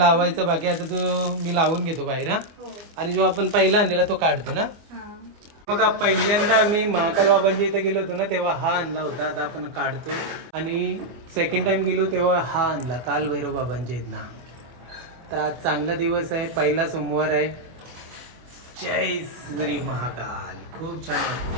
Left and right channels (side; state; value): left; late; 24 ms